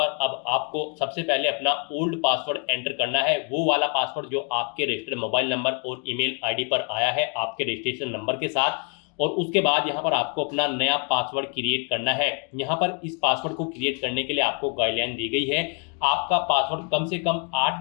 अब आपको सबसे पहले अपना ओल्ड पासवर्ड एंटर करना है, वो वाला पासवर्ड जो आपके रजिस्टर्ड मोबाइल नंबर और ईमेल आईडी पर आया है आपके रजिस्ट्रेशन नंबर के साथ। और उसके बाद यहाँ पर आपको अपना नया पासवर्ड क्रिएट करना है। यहाँ पर इस पासवर्ड को क्रिएट करने के लिए आपको गाइडलाइन दी गई है। आपका पासवर्ड कम से कम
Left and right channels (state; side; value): quieter; right; 38.0 dB